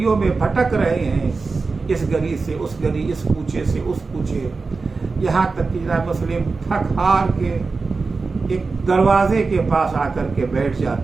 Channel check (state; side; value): quieter; left; 4.2 dB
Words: میں بھٹک رہے ہیں، اس گلی سے اس گلی، اس کوچے سے اس کوچے، یہاں تک کہ جناب مسلم تھک ہار کے ایک دروازے کے پاس آ کر کے بیٹھ